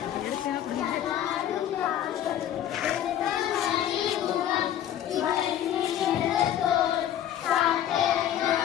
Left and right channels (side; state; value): right; quieter; 11.1 dB